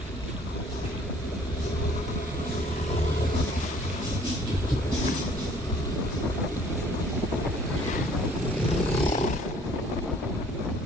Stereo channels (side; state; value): both; normal; correlation 0.56